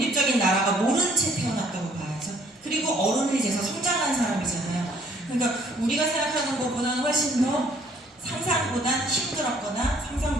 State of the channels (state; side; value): normal; both; correlation 0.61